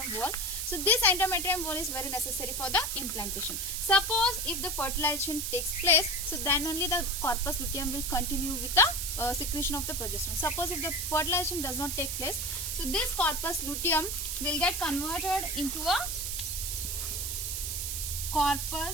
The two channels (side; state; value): right; noise; hiss, 2 dB below the sound